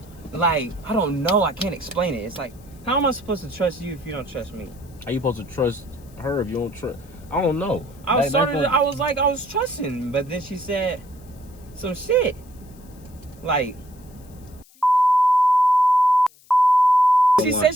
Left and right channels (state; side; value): noise; left; hiss, 28 dB below the sound